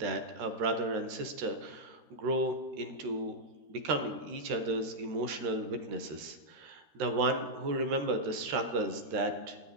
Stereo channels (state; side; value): late; left; 13 ms